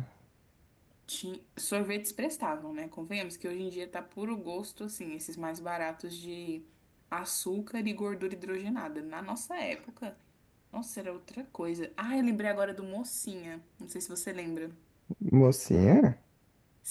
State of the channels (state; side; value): identical; both; correlation 1.00